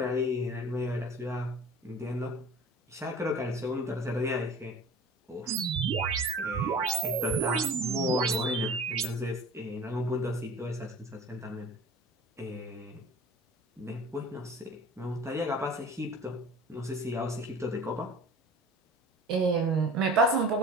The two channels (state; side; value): normal; both; correlation 0.41